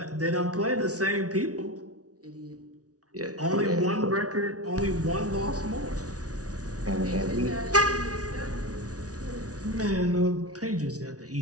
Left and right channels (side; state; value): left; late; 0.68 ms